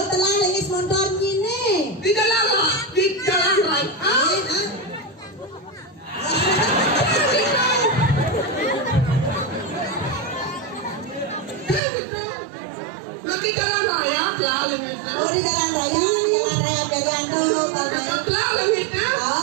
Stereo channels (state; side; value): drops out; left; at 11.8 s